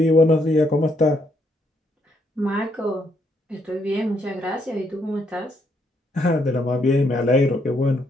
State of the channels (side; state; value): both; normal; correlation 0.74